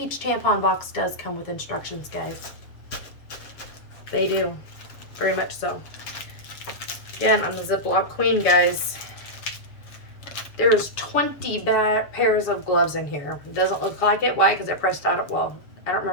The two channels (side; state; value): right; late; 7.1 ms